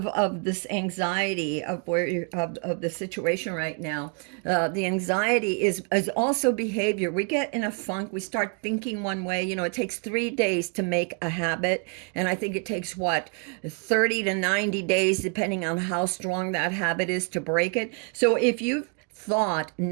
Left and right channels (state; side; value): quieter; left; 37.0 dB